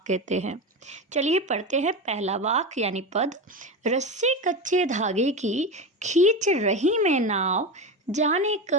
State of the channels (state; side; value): normal; both; correlation 0.20